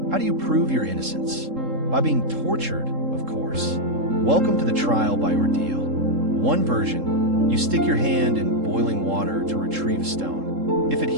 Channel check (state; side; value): late; left; 3.7 ms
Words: How do you prove your innocence? By being tortured, of course. Welcome to the trial by ordeal. One version: you stick your hand in boiling water to retrieve a stone. If it